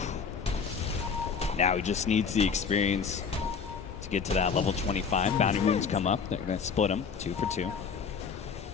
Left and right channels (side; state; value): right; quieter; 6.0 dB